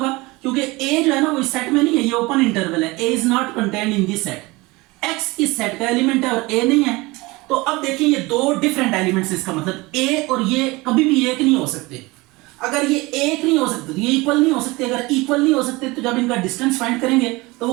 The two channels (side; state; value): left; quieter; 22.8 dB